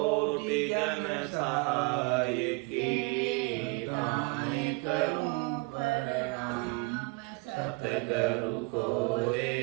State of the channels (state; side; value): quieter; left; 27.7 dB